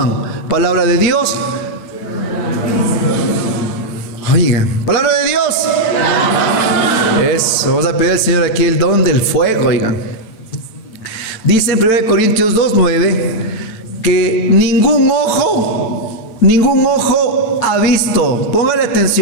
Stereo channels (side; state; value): right; late; 9.0 ms